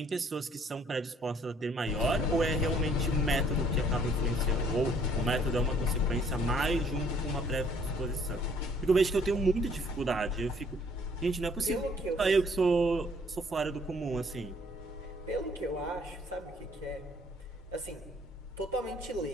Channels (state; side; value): normal; both; correlation 0.62